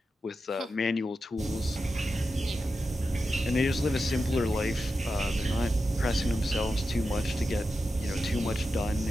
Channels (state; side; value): normal; both; correlation 0.90